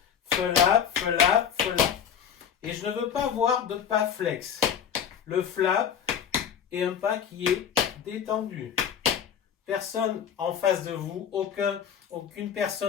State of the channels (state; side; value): quieter; right; 8.2 dB